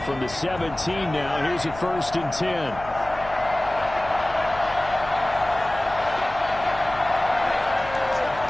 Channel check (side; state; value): left; noise; hum, 15 dB below the sound